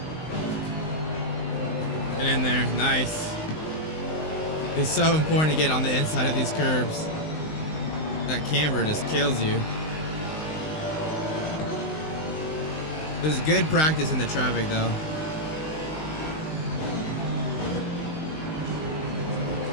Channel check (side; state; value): right; late; 19 ms